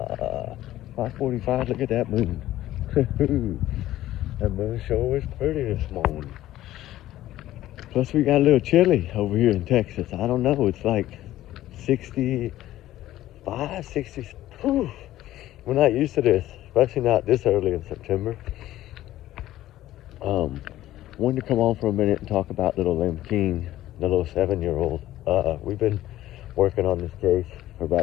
Look at that moon. That moon sure is pretty this morning. Plus we got a little chilly over here in Texas. I don't know. It's like 65, 60. Whew. We're not used to this, especially not this early in September. Wanted to come on for a minute and talk about little Lim King, the little 7-year-old. We've been working on this case for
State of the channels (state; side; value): quieter; right; 14.3 dB